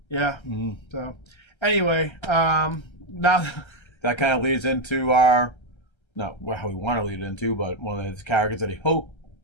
So... Anyway, now that kind of leads into not how we want to lead it into, but one of his characters that he hoped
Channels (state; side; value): late; right; 1.3 ms